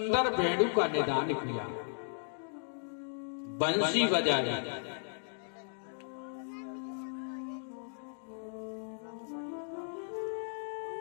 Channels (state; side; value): silent; right; digital silence